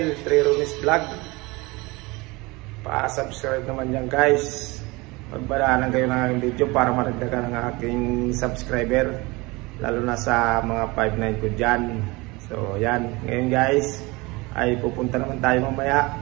Trironis Vlog. Pa-subscribe naman yan guys. Magbaraanan kayo ng aking video para maragdagan ang aking subscriber, lalo na sa mga 5-9 ko dyan. So yan, ngayon guys ay pupunta naman tayo mamaya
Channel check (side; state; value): left; quieter; 23.8 dB